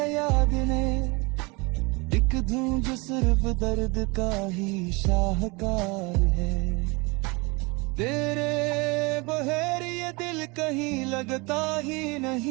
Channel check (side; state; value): left; quieter; 26.8 dB